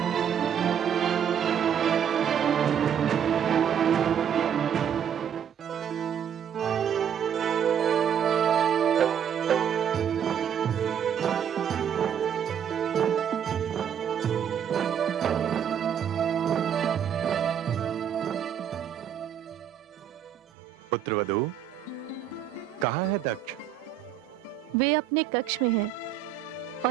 पुत्रवधू, कहाँ है दक्ष? वे अपने कक्ष में हैं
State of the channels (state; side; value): quieter; left; 8.8 dB